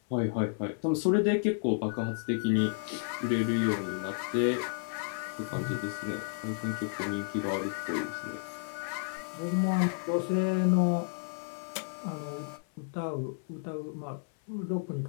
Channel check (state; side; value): silent; right; 57 dB below the other